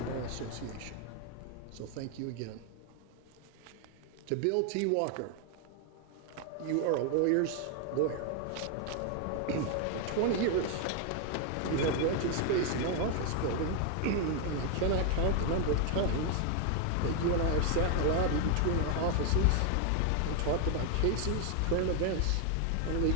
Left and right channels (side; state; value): both; different; correlation 0.01